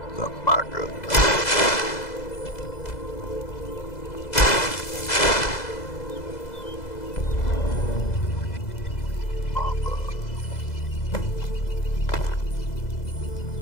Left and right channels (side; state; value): right; late; 2.0 ms